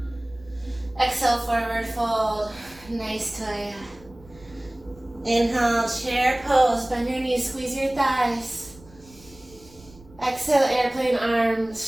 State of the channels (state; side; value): noise; right; rumble, 24 dB below the sound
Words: Exhale, forward fold. Nice toya. Inhale, chair pose. Bend your knees, squeeze your thighs. Exhale, airplane